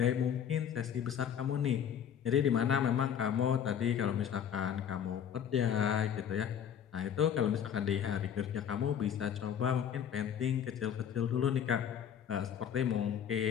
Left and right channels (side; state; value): right; quieter; 8.7 dB